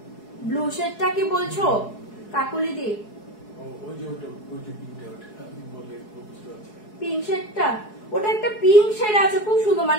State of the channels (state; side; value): late; right; 4.7 ms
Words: ব্লু শেডটা কি বলছো কাকুলি দি পিঙ্ক শেডটা ওটা একটা পিঙ্ক শেড আছে খুব সুন্দর